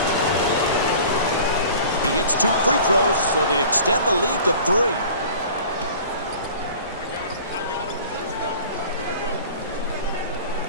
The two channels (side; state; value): both; inverted; correlation -0.44